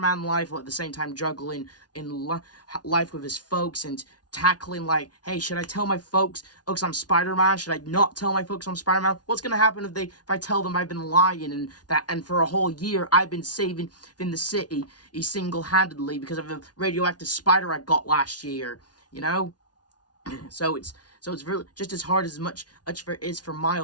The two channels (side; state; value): right; late; 0.69 ms